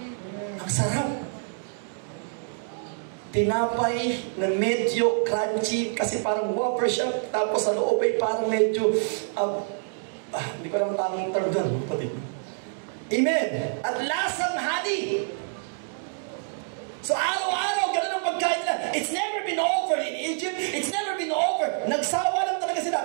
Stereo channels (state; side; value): silent; left; digital silence